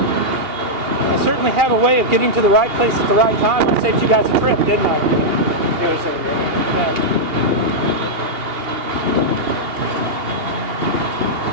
I certainly have a way of getting to the right place at the right time. I saved you guys a trip, didn't I? Yeah.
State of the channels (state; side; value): late; left; 2.8 ms